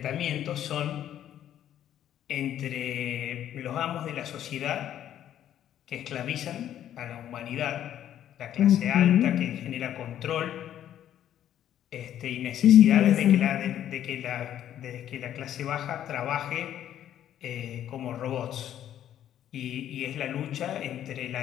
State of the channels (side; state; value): right; quieter; 11.0 dB